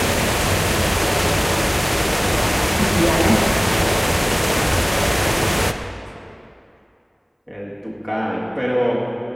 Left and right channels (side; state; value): both; identical; correlation 1.00